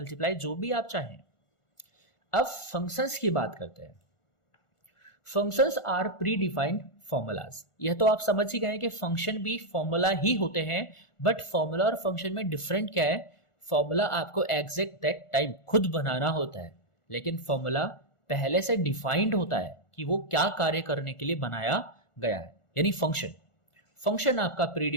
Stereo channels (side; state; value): right; late; 1.4 ms